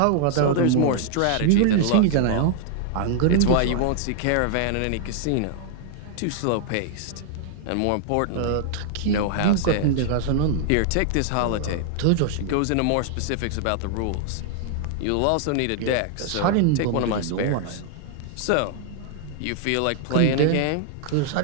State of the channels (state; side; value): different; both; correlation -0.01